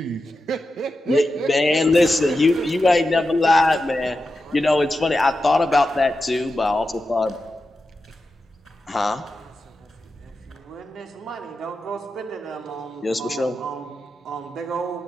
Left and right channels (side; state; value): both; normal; correlation 0.90